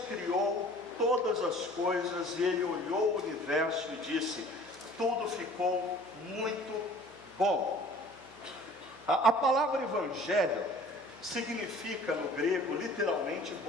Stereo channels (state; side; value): noise; right; hum, 26 dB below the sound